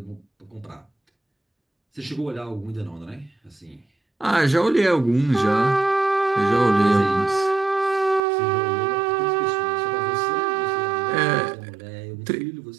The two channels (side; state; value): left; drops out; at 8.2 s